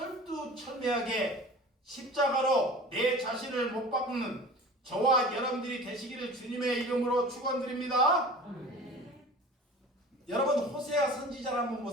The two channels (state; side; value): normal; both; correlation 0.40